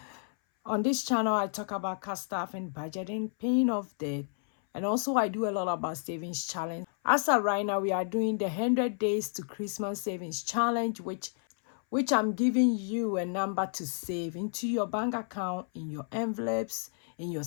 On this channel, I talk about cash stuff and budgeting, paying off debt, and also I do a lot about savings challenge. As of right now, we are doing the 100 days to Christmas savings challenge, which I'm giving you a number to save into your bank account, in your envelopes, in your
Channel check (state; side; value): silent; right; 57 dB below the other